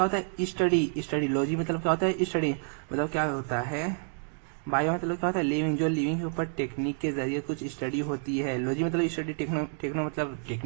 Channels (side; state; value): left; silent; 59 dB below the other